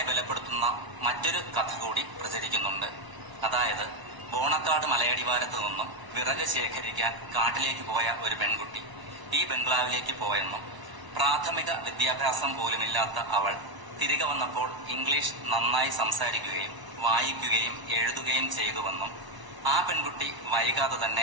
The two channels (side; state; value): left; late; 1.0 ms